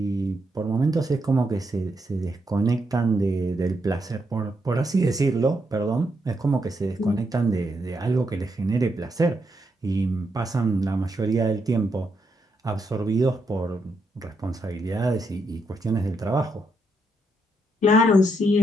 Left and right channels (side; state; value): both; normal; correlation 0.80